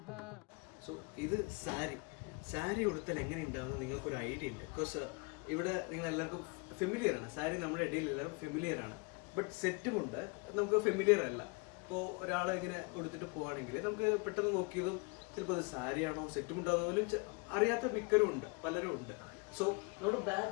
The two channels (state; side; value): quieter; right; 30.5 dB